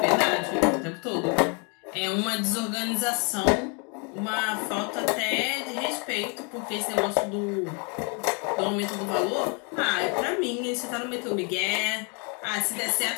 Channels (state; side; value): quieter; right; 35.0 dB